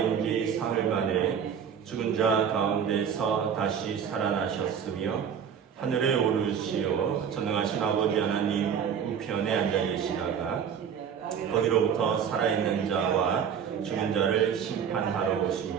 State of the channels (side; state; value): left; quieter; 7.7 dB